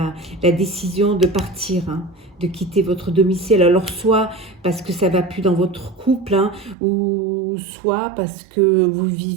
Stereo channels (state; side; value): drops out; left; at 6.8 s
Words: la décision de partir, de quitter votre domicile. Alors soit parce que ça ne va plus dans votre couple, ou soit parce que vous